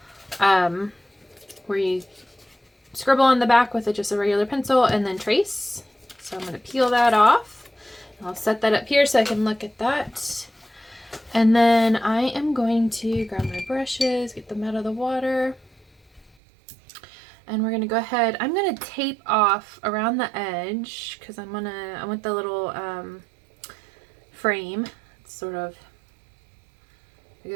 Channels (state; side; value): drops out; left; at 16.3 s